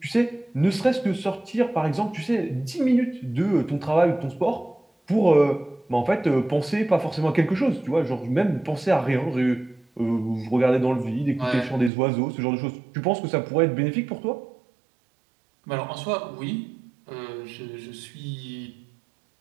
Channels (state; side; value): drops out; left; at 11.9 s